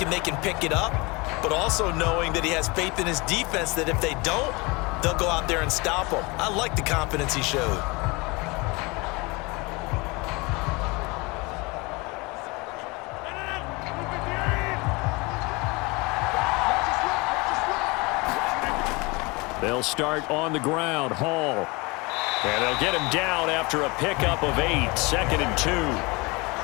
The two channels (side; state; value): right; quieter; 25.9 dB